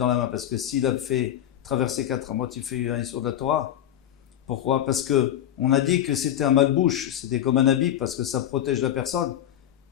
la main, parce que s'il a fait traverser 4 amot, il fait un issour de la Torah. Pourquoi? Parce que on a dit que c'était un malbouche, c'était comme un habit, parce que ça protège la personne.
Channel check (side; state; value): right; quieter; 11.2 dB